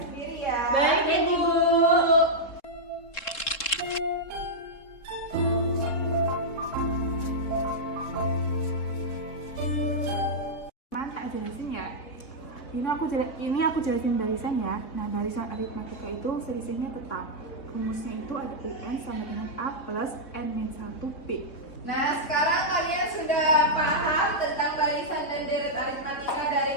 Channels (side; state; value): right; late; 3.7 ms